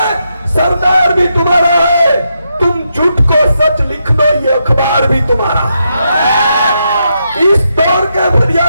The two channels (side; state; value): both; inverted; correlation -0.83